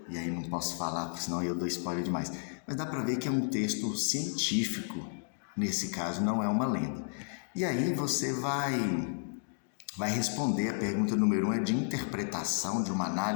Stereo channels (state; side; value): silent; right; digital silence